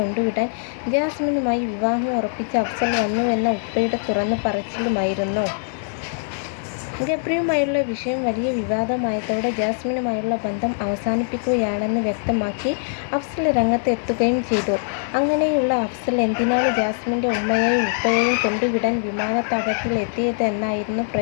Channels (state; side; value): silent; right; digital silence